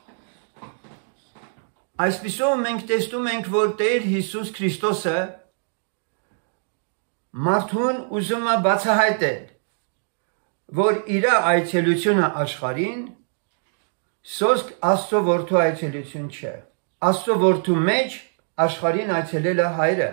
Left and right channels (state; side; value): silent; left; digital silence